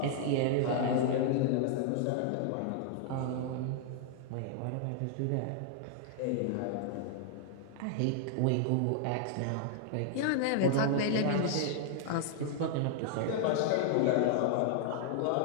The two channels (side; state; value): both; different; correlation 0.00